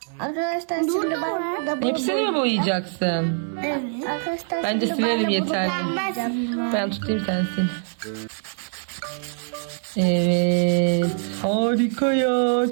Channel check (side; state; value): left; silent; 61 dB below the other